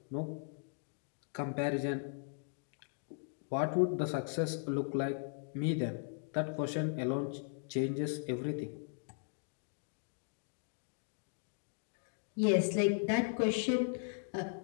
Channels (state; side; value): silent; right; digital silence